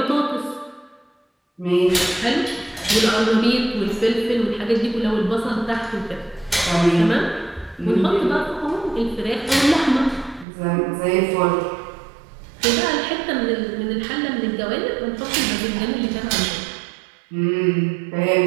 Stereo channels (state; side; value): drops out; left; at 10.5 s